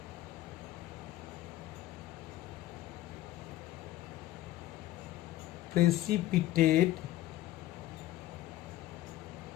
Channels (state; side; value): quieter; right; 15.1 dB